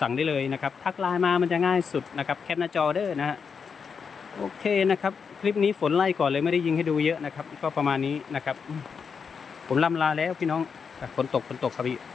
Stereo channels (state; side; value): quieter; right; 6.0 dB